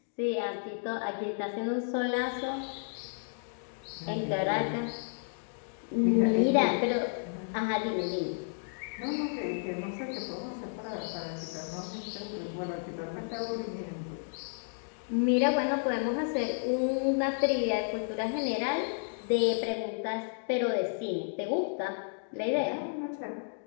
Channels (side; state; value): right; silent; digital silence